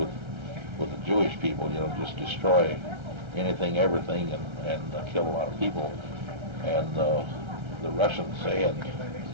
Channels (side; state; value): left; late; 1.3 ms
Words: the Jewish people, just destroy anything, everything, and kill a lot of people. And the Russians say, and